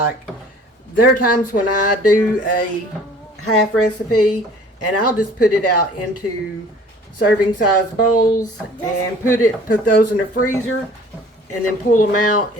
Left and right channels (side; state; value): both; normal; correlation 0.51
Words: there are times when I do a half recipe and I'll just put it out into serving size bowls and put those in the freezer and then pull them out